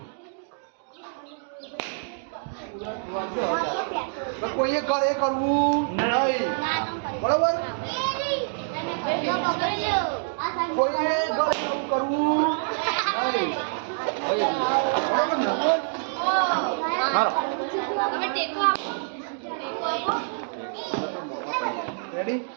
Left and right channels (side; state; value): left; silent; digital silence